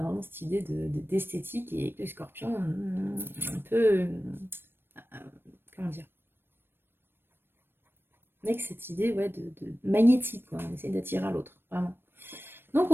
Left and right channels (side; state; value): left; late; 0.10 ms